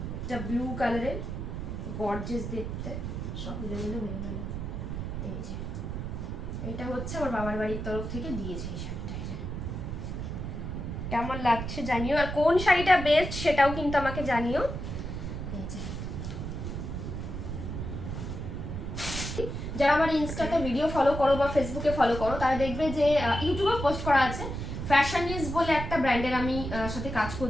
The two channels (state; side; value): noise; right; rumble, 5 dB below the sound